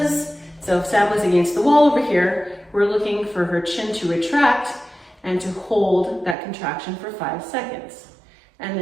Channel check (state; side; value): drops out; left; at 6.4 s